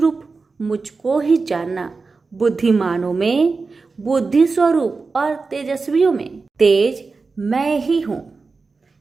मुझको ही जानना, बुद्धिमानों में बुद्धि स्वरूप और तेजस्वियों में तेज मैं ही हूँ।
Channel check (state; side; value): quieter; left; 4.2 dB